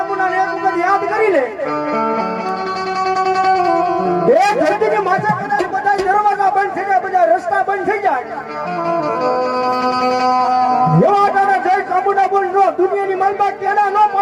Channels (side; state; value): both; identical; correlation 1.00